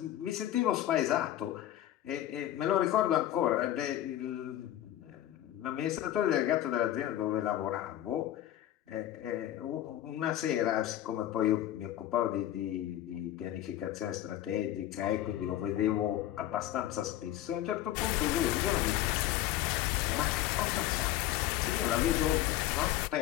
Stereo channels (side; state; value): right; quieter; 13.1 dB